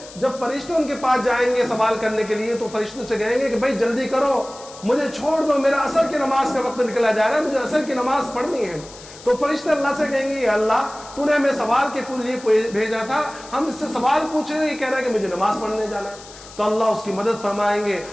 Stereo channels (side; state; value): left; noise; hiss, 18 dB below the sound